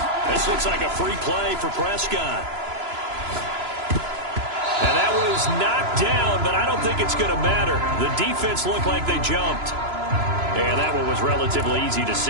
This looks like a free play for Prescott. And that was knocked down, but I don't think it's going to matter. The defense looked like they jumped. And that one was relatively easy to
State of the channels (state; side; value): late; left; 3.0 ms